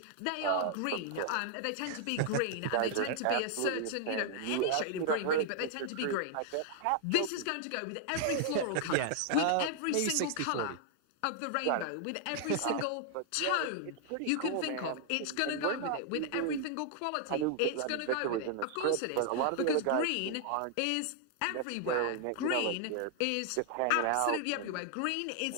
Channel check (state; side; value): different; both; correlation 0.00